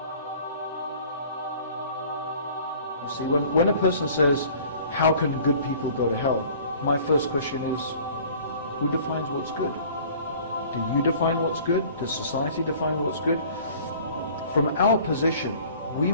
See, when a person says, how can good people go to hell? My first question is, who defines what's good? Do you define what's good? Does society define what's good? From our position, we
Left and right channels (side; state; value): both; inverted; correlation -0.49